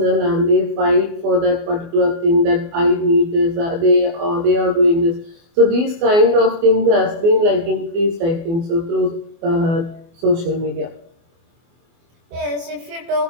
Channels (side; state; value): left; late; 24 ms